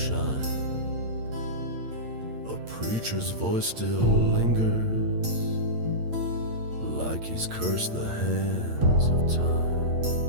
A preacher's voice still lingers, like he's cursed the hands of time.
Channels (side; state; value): left; late; 8.7 ms